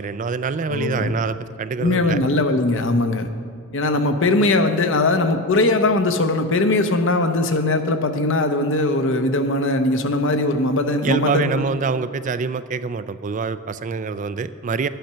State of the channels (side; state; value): both; normal; correlation 0.22